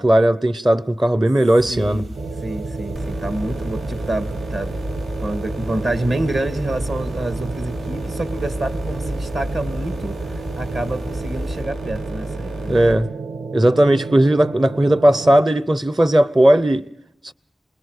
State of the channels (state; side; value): normal; both; correlation 0.96